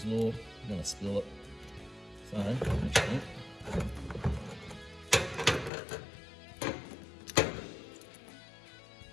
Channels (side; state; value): right; drops out; at 5.7 s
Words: Law, I'm gonna spill it. So, actually,